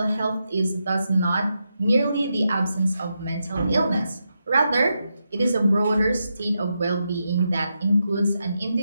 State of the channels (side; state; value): both; inverted; correlation -0.86